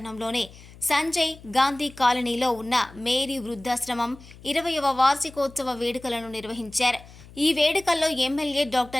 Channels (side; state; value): left; noise; hum, 20 dB below the sound